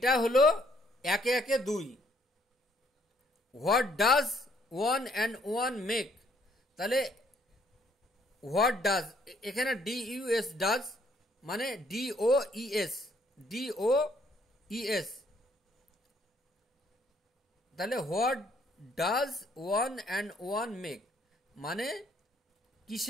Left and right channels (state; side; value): normal; both; correlation 0.66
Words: হলো একে একে দুই। What does one and one make, তাহলে হোয়াট ডাজ, এখানে ডি ইউ এস ডাজ মানে ডি ও ই এস, ডি ও ই এস, তাহলে what does one and one make মানে